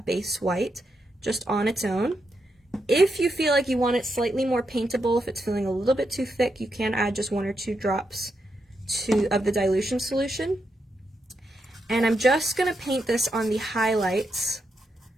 base white just on its own. If you feel like you want it slightly more paintable, if it's feeling a little bit too thick, you can add just 1 or 2 drops of the dilution solution. And I'm just going to paint this on the highlights.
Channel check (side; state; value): both; normal; correlation 0.83